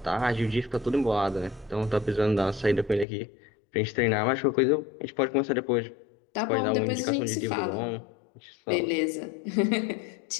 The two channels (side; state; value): right; drops out; at 3.1 s